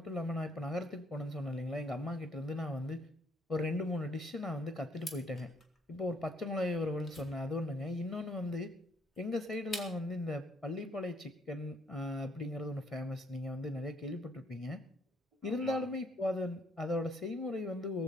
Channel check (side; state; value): both; normal; correlation 0.67